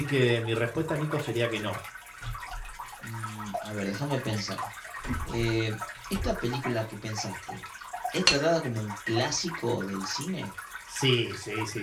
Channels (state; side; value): identical; both; correlation 1.00